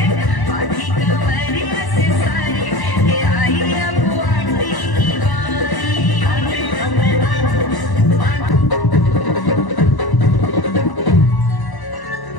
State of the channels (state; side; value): late; right; 1.0 ms